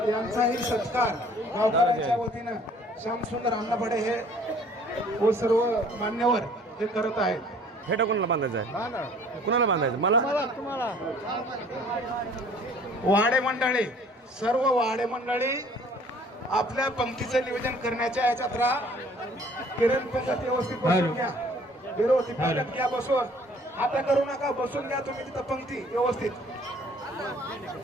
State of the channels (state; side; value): normal; both; correlation 0.55